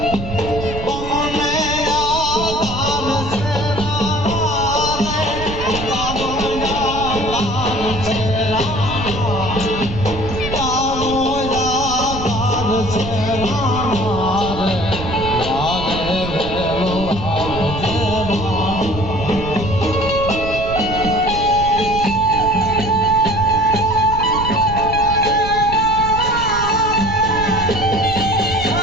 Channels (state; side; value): noise; right; rumble, 8 dB below the sound